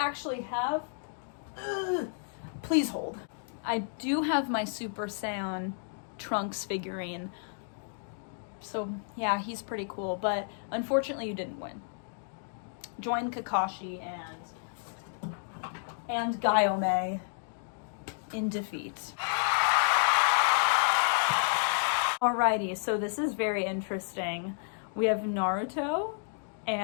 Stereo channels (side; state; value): right; silent; digital silence